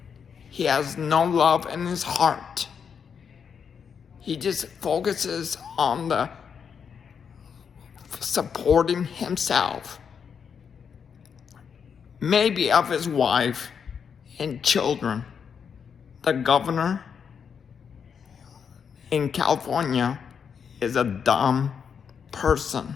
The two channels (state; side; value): quieter; right; 6.9 dB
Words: He has no love in his heart. He just focuses on the supporting himself, maybe of his wife and children. The governor in California is a dumb person.